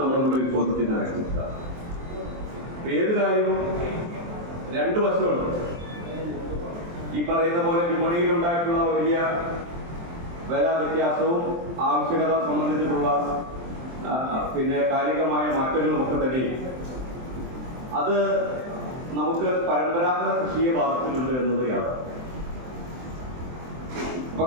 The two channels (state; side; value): late; left; 23 ms